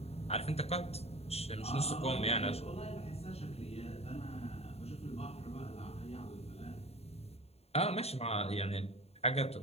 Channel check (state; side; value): late; right; 0.30 ms